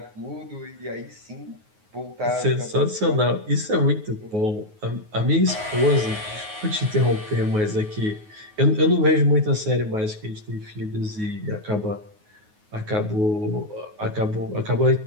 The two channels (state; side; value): late; left; 9.4 ms